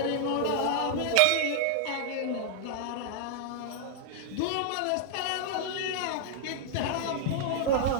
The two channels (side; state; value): both; different; correlation -0.01